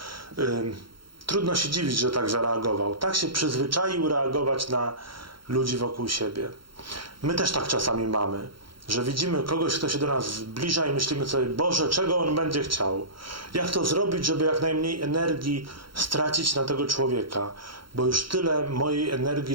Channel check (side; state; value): left; late; 0.73 ms